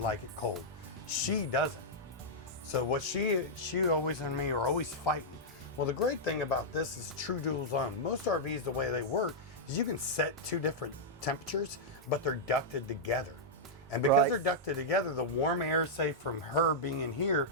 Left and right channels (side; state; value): both; normal; correlation -0.08